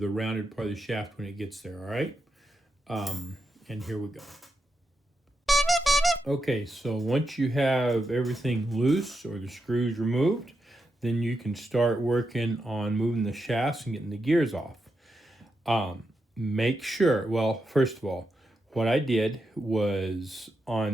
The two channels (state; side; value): normal; both; correlation 0.85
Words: rounded part of the shaft when it gets there. All right, and here we go. Okay, so once you have everything loose or the screws removed, then you can start working on moving the shafts and getting the gears off. Make sure, well, first of all, what I did was